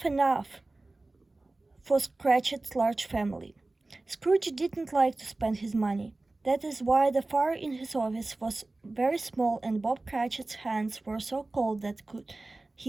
enough for Cratchit's large family. Scrooge didn't like to spend his money. That is why the fire in his office was very small and Bob Cratchit's hands were so cold that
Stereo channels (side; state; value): left; quieter; 3.0 dB